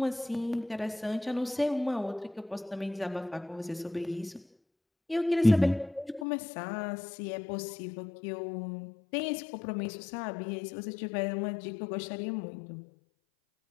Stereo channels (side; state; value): right; drops out; at 6.2 s